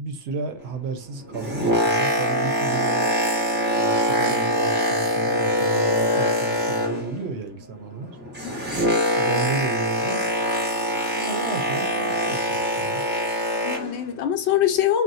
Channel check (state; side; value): normal; both; correlation -0.16